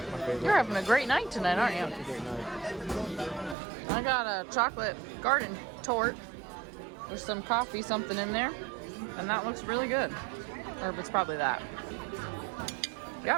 favorite. You're having a great night tonight, aren't you? It's a great night. I got a chocolate garden tort with some coffee, something in there, and that looks really good. Or it's probably that.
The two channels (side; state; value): left; drops out; at 3.6 s